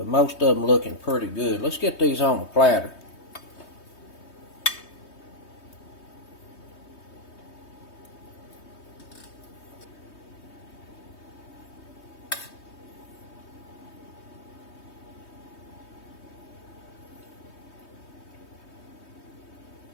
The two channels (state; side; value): late; right; 3.2 ms